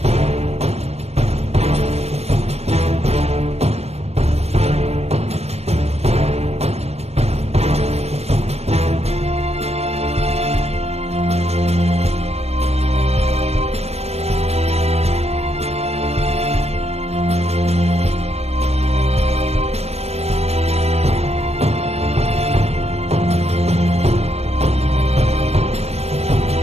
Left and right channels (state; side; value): late; left; 0.31 ms